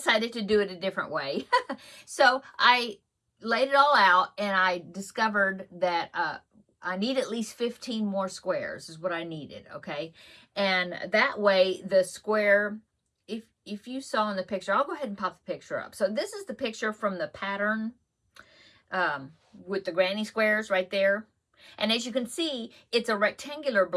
to do it a different way. So I laid it all out, and I discovered that I need at least 15 more squares is what I needed, okay? And that way the square, if you saw in the picture, I'll go ahead and pop the picture up. So this is the picture from the pattern with the granny squares right there. And as you can see, it's a rectangular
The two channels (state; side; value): identical; both; correlation 1.00